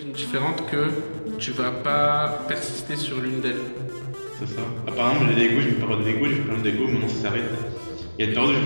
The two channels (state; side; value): inverted; both; correlation -1.00